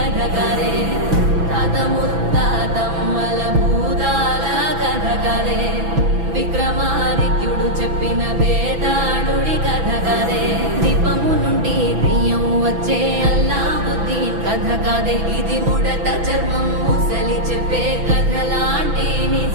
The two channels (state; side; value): late; left; 6.0 ms